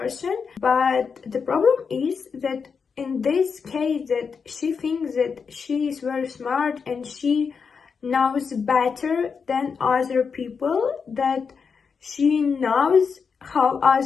but the problem is that in this case that she thinks that she is very smart and she knows better than other people, that she knows how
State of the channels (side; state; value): right; quieter; 5.8 dB